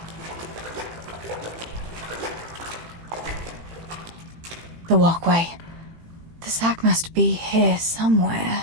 The walkway. The sack must be here somewhere.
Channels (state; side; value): late; left; 18 ms